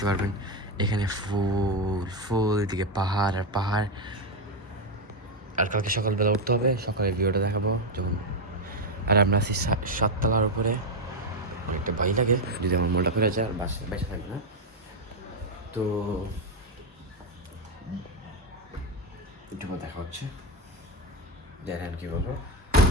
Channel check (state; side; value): normal; both; correlation 0.07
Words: পারবেন এখানে ফুল ফুল, এদিকে পাহাড় আর পাহাড়। আর কালকে সকালবেলা উঠতে হবে, সকালে ভিউটা দেখাবো যখন। আর আমরা আছি 7 তলার উপরে, অনেকটা ভয় লাগে যদি আমার মনটা করে যায় আর বেঁচে থাকবে না। তো একটু দেখা হচ্ছে, জানেন কি বলবো।